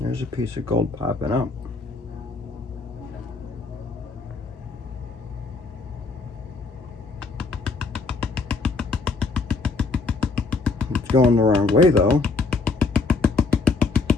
piece of gold popping up. It's going the wrong way though.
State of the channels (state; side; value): quieter; right; 4.0 dB